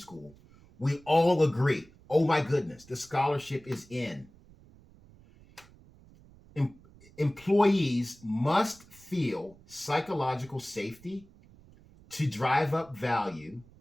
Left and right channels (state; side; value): noise; right; rumble, 25 dB below the sound